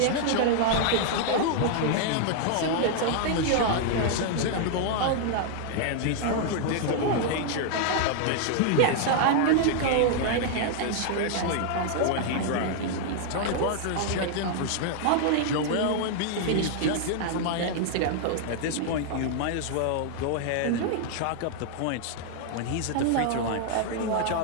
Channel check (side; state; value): both; different; correlation -0.01